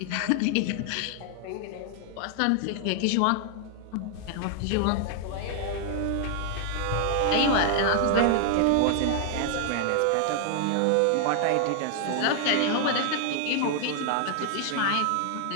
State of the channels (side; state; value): both; different; correlation 0.00